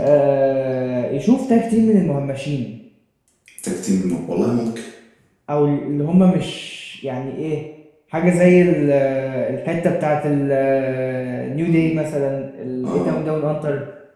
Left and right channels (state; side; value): identical; both; correlation 1.00